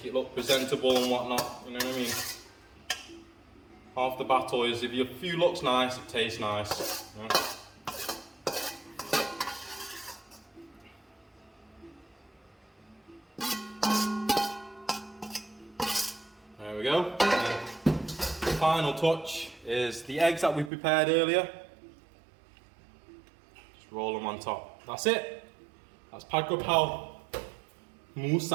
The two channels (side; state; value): left; drops out; at 20.7 s